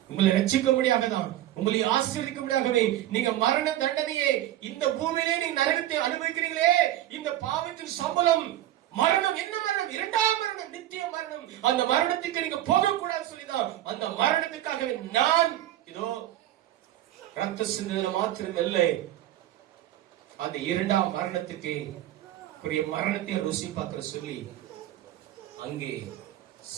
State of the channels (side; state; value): left; quieter; 13.4 dB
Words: உங்களை ரட்சிக்க முடியாதான், உங்களை ஆசீர்வதிக்க முடியாகவே நீங்க மரண தண்டனையே இந்த பூமியிலே நீங்க நரகத்தை அனுபவிக்கிறீங்களே. இந்த பாவத்தின் சம்பளம் மரணம். என்ன மரணம்? இரண்டாம் மரணம், நித்திய மரணம். அந்த மரணத்துக்கு நீங்க போகக்கூடாது சொல்லிதான் அந்த மரணத்துக்காகவே நான் இதோ ரத்த சிந்தனை மாத்திரம் இல்லை, அந்த இரண்டாம் மரணத்துக்கு மரணத்தை ருசி பார்க்கிற சொல்லி அங்கே